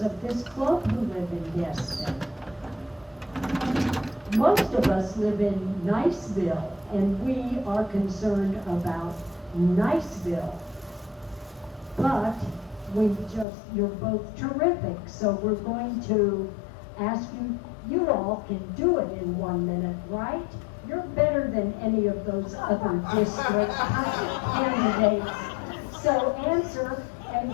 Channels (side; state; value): right; drops out; at 13.5 s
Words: this club who live in Destin. Most of us live in Niceville, and we are concerned about Niceville. But you're both terrific, so we're going to ask you, you all can do it in 1 minute, right? You're better than any of those other district candidates. So answer,